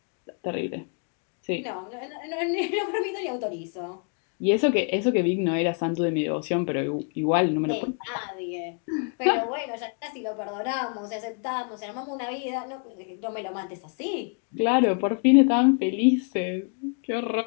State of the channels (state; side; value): quieter; right; 39.9 dB